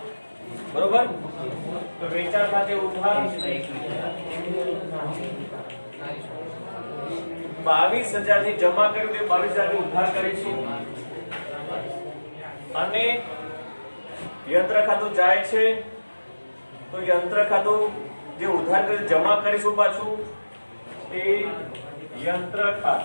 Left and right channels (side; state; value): both; inverted; correlation -1.00